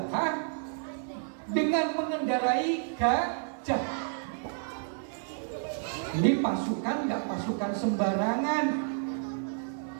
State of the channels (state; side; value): silent; left; 58 dB below the other